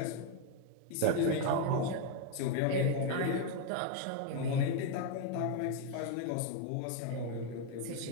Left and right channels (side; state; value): both; different; correlation 0.01